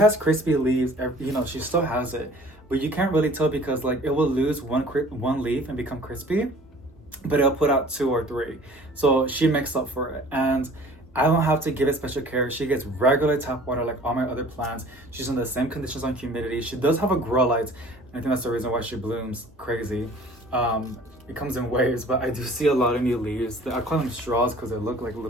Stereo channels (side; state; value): both; normal; correlation 0.49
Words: crispy leaves, you know, she still has it, but you can't really tell because like it will lose one leaf and become crispy, but it'll put out 2 or 3. So she makes up for it. And I don't have to give it special care. She gets regular tap water like all my other plants. She's in the same conditions on humidity. She does have a grow light. I think that's the reason why she blooms crazy. It comes in waves, but I do see a lot of new leaves. I call them straws because they look like